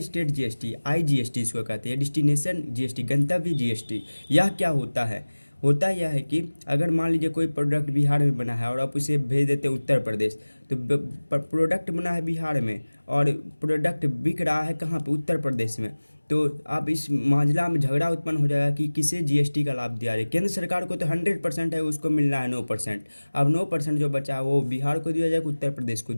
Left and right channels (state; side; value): inverted; both; correlation -1.00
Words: स्टेट जीएसटी, आईजीएसटी इसको कहते हैं, डेस्टिनेशन जीएसटी, गंतव्य जीएसटी। यह क्या होता है? होता यह है कि अगर मान लीजिए कोई प्रोडक्ट बिहार में बना है और आप उसे भेज देते हैं उत्तर प्रदेश, तो प्रोडक्ट बना है बिहार में और प्रोडक्ट बिक रहा है कहाँ पे? उत्तर प्रदेश में, तो अब इस मामला में झगड़ा उत्पन्न हो जाएगा कि किसे जीएसटी का लाभ दिया जाए। केंद्र सरकार को तो 100% है, उसको मिलना है 9%। अब 9% जो बचा है वो बिहार को दिया जाए, उत्तर प्रदेश को